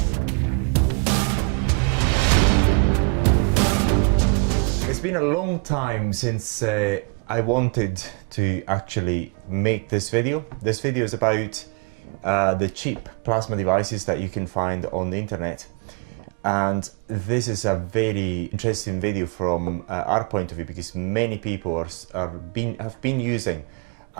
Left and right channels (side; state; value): left; quieter; 35.2 dB